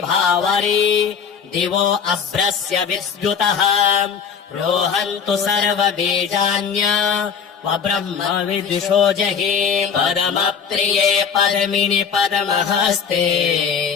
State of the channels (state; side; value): quieter; right; 6.8 dB